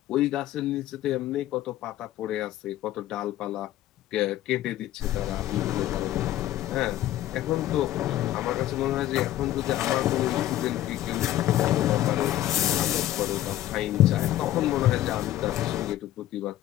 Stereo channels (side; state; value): right; quieter; 13.6 dB